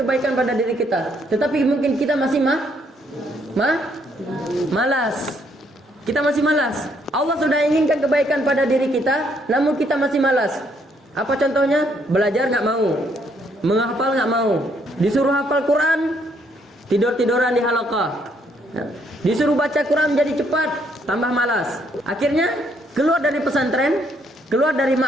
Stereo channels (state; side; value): normal; both; correlation 0.70